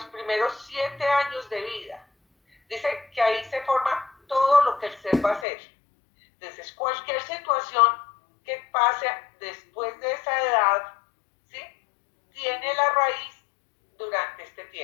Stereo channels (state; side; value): drops out; right; at 5.5 s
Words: primeros 7 años de vida. Dice que ahí se forma todo lo que el ser va a hacer. Entonces, cualquier situación que pase después de esa edad, ¿sí? Tiene la raíz durante este